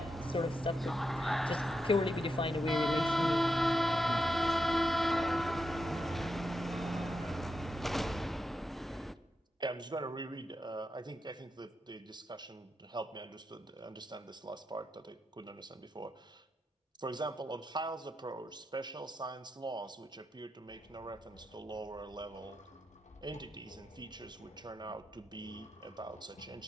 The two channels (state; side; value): normal; both; correlation 0.86